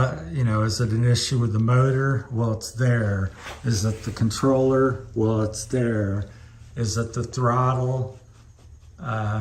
you know, is it an issue with the motor? Well, it's there. Is it the controller? Well, it's there. Is it the throttle?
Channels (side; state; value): both; identical; correlation 1.00